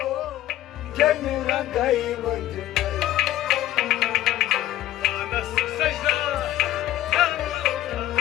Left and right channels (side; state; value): right; quieter; 13.8 dB